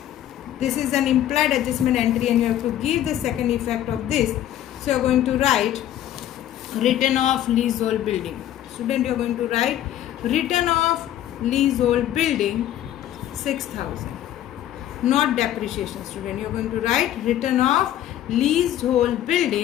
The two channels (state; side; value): quieter; right; 12.1 dB